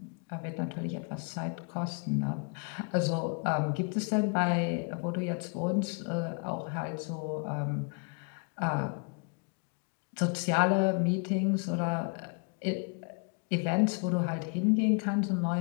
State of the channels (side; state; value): right; quieter; 37.5 dB